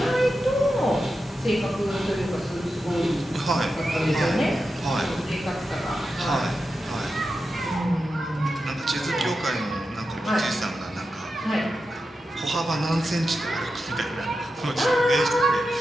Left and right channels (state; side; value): normal; both; correlation 0.90